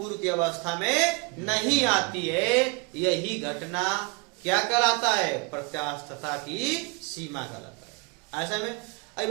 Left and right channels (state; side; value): quieter; left; 31.9 dB